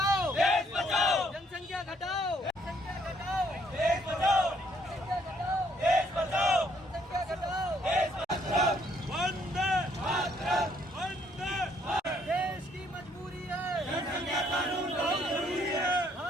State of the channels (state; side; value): normal; both; correlation 0.68